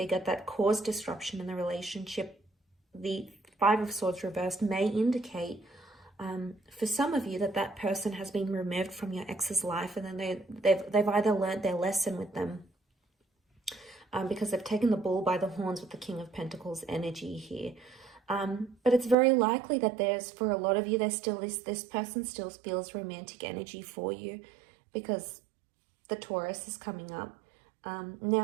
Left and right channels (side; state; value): left; drops out; at 19.2 s